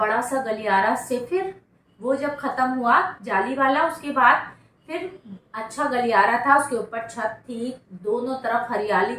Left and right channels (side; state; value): both; identical; correlation 1.00